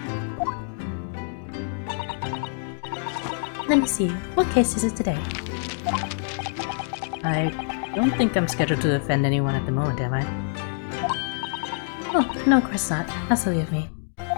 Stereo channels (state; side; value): silent; right; digital silence